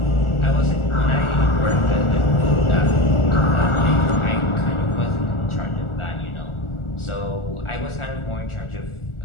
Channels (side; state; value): right; late; 1.4 ms